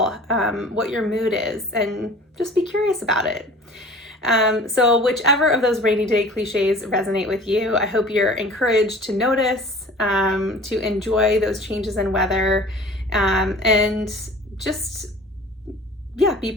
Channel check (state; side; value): normal; both; correlation 0.44